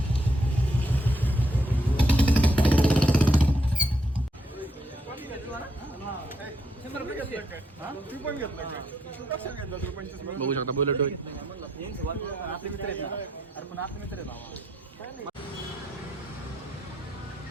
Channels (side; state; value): both; normal; correlation 0.76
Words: बघू शकता बुलेट.